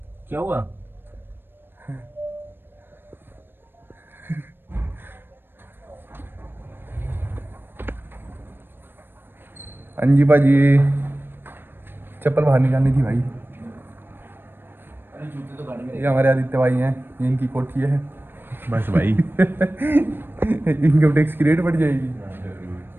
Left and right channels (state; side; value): late; left; 0.099 ms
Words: क्या हुआ? हाँ जी भाजी, चप्पल बाहर निकालनी थी भाई। ये हमारे आदित्य भाई हैं, ये इनकी कोठी है। बस भाई। इनकम टैक्स की रेट बढ़ जाएगी।